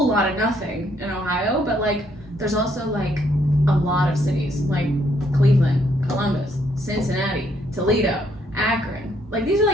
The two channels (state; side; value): normal; both; correlation 0.70